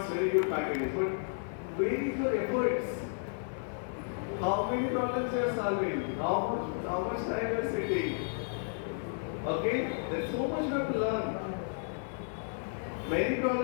very good packages, but where is your efforts? How many problems you are solving? How much time you are sitting? Okay, there's so much you have to learn. Many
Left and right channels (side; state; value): right; silent; 56 dB below the other